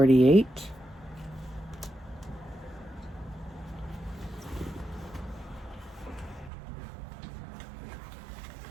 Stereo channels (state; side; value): drops out; left; at 6.5 s